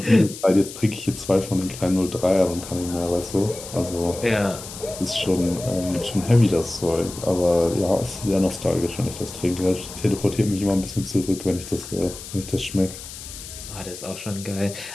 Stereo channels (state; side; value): noise; left; hiss, 12 dB below the sound